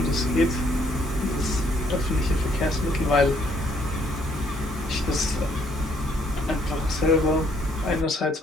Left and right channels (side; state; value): both; normal; correlation 0.68